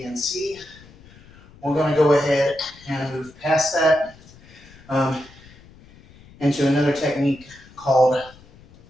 and C. We're going to go ahead and move past that into another technique called,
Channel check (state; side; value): noise; left; rumble, 24 dB below the sound